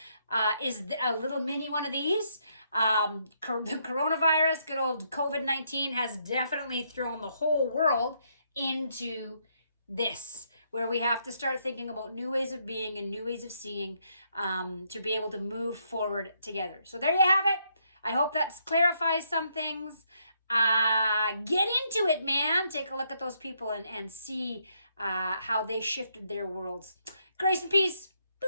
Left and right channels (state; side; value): inverted; both; correlation -0.74